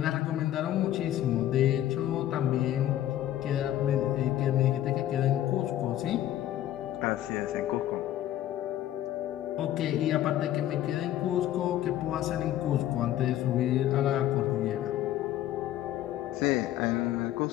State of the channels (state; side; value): quieter; right; 12.8 dB